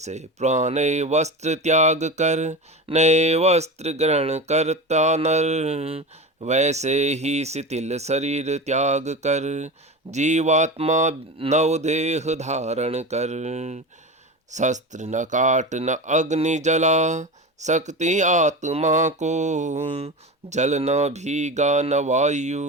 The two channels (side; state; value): both; normal; correlation 0.26